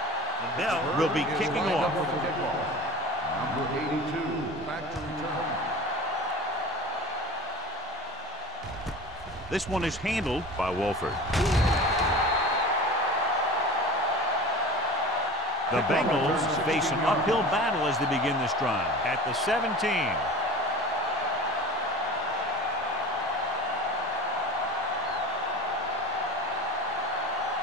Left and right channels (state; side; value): normal; both; correlation 0.36